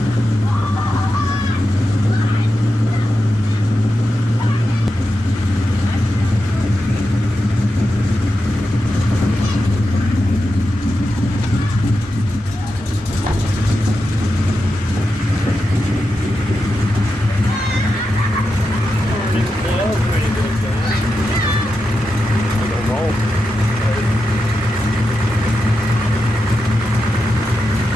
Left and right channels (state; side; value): normal; both; correlation 0.89